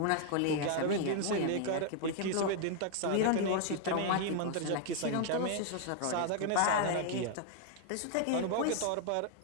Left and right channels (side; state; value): both; different; correlation 0.00